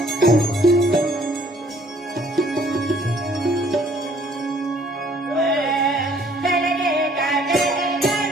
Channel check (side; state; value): both; normal; correlation 0.60